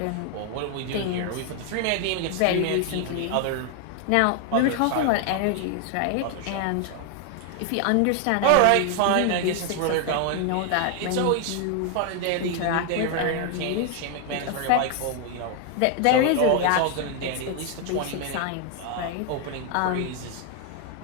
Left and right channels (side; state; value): both; different; correlation 0.00